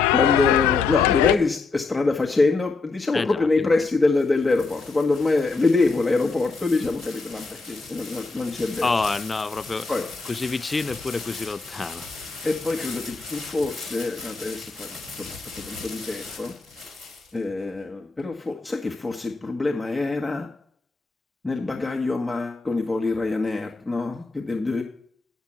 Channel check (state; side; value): quieter; right; 3.9 dB